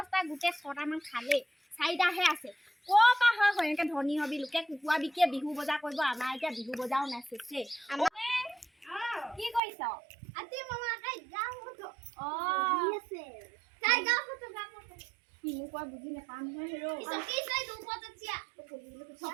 গোটেই 6টামান খালে 4টাহে আছে ক'ৰ পৰা হয় এনেকে ধনী হবি লোকে কুকুৰা বিকিয়ে বিহু বজাৰ কৰিব আমাৰ এতিয়া বিহু বজাৰো নাচিছে কি কৰিছ আজি মামা কাই যাওঁ আছে কিনোকুৱা বুজি নাপাম নহয় হেৰ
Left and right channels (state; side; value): drops out; left; at 9.6 s